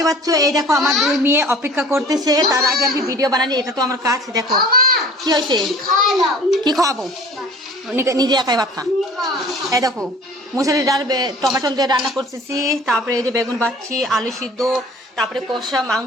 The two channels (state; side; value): normal; both; correlation 0.46